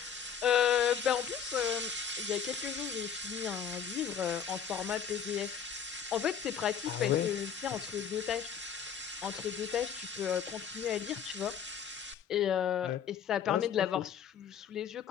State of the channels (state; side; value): quieter; right; 7.8 dB